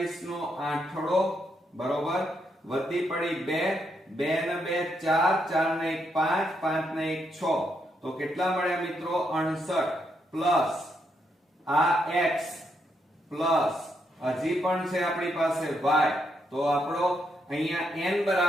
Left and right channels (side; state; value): both; normal; correlation 0.78